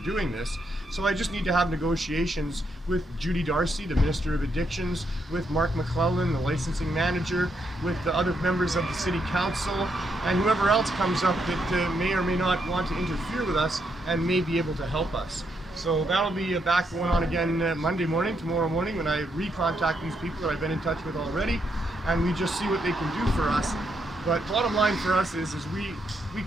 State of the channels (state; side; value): normal; both; correlation 0.78